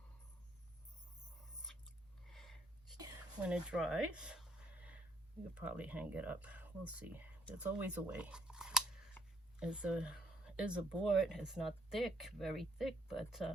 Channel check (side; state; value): both; normal; correlation 0.64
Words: When it dries, you'll probably hang it up. We'll see. There's always a way. It's a board. It's not thick, very thick,